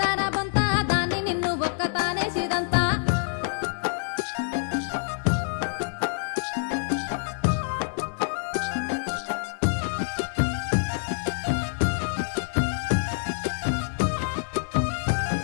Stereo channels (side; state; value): right; silent; digital silence